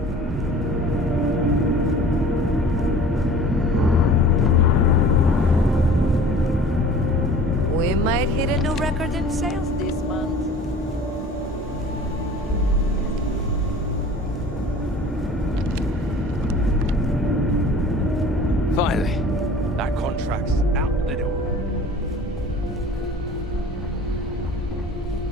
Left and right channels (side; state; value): both; normal; correlation 0.45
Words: We might hit a new record in sales this month. Finally, that contract's out the door.